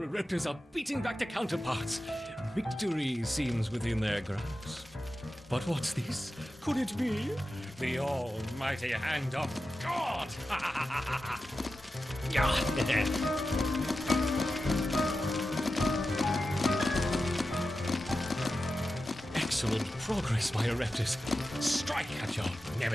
Raptors are beating back their counterparts. Victory seems within their grasp. But what's this? Could it be the almighty hand of God? Yeah. Excellent progress, my Raptors. Strike at your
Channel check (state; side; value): normal; both; correlation 0.92